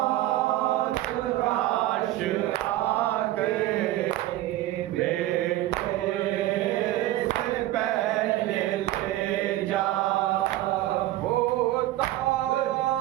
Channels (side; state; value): left; quieter; 15.4 dB